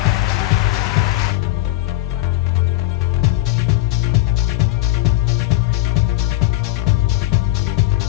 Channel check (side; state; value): right; quieter; 16.6 dB